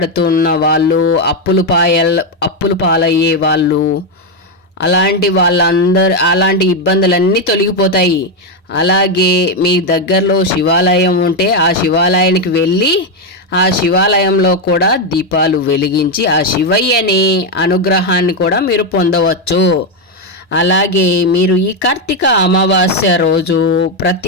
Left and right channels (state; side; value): normal; both; correlation 0.06